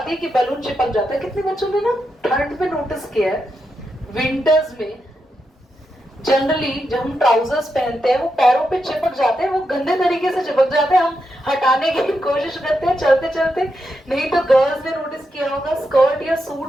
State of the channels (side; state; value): both; normal; correlation 0.85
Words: है कि बलून चिपक जाता है. कितने बच्चों ने ना ठंड में नोटिस किया है, विंटर्स में जनरली जब हम ट्राउजर्स पहनते हैं वो पैरों पे चिपक जाते हैं, वो गंदे तरीके से चिपक जाते हैं. हम हटाने की कोशिश करते हैं चलते चलते. नहीं तो गर्ल्स ने नोटिस किया होगा, स्कर्ट या